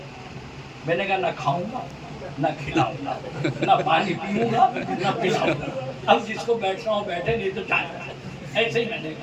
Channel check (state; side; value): identical; both; correlation 1.00